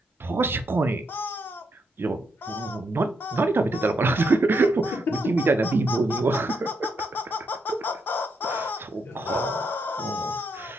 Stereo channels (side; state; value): both; normal; correlation 0.79